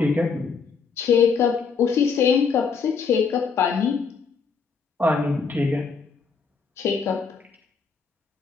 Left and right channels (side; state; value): right; quieter; 5.4 dB